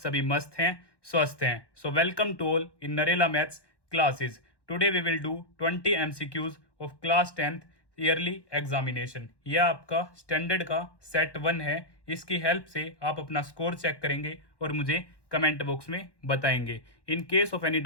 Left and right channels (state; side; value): late; right; 1.1 ms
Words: मस्त हैं, स्वस्थ हैं। So welcome to all in Narela maths classes. Today we will do 20 MCQs of class 10th yearly examination. यह आपका स्टैंडर्ड का सेट 1 है। इसकी हेल्प से आप अपना स्कोर चेक करेंगे और मुझे कमेंट बॉक्स में बताएंगे। In case of any